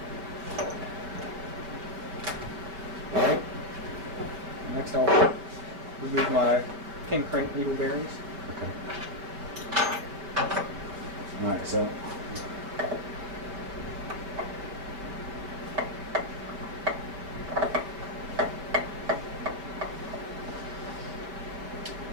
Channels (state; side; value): late; left; 5.3 ms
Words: Alright. Next I'll remove my pin crank needle bearings. Okay. All right. So.